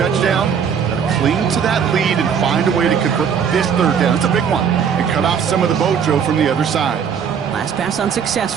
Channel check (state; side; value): quieter; left; 7.3 dB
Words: Cling to that lead and find a way to convert this third down. It's a big one. And cut off some of the Bojo from the other side. Last pass